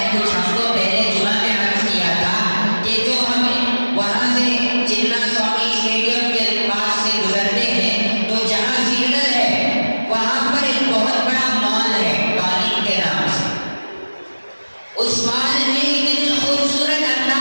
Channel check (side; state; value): both; inverted; correlation -1.00